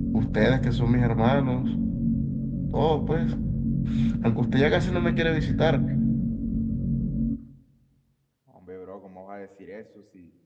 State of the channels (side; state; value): both; identical; correlation 1.00